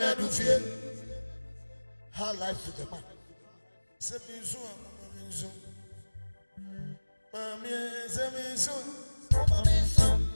of fear. How life to the man. Semizu, Mamizu. Mamie, Semizu, Mamizu.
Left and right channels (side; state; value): both; inverted; correlation -1.00